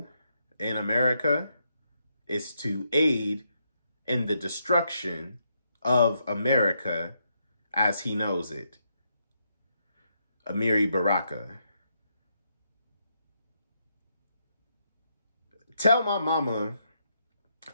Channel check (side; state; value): both; inverted; correlation -0.79